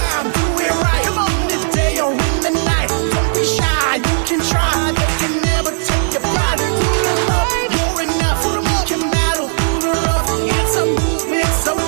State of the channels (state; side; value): silent; left; digital silence